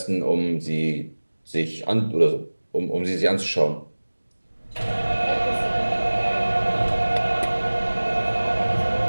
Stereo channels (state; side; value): inverted; both; correlation -1.00